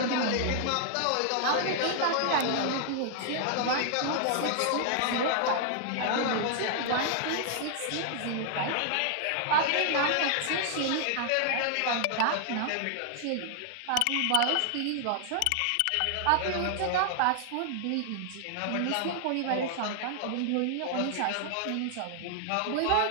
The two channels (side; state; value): both; different; correlation 0.00